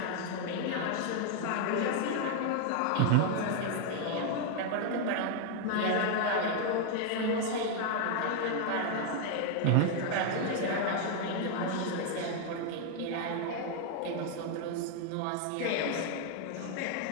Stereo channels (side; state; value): both; different; correlation 0.00